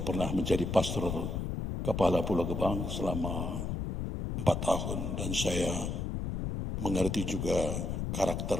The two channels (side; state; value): left; noise; rumble, 3 dB below the sound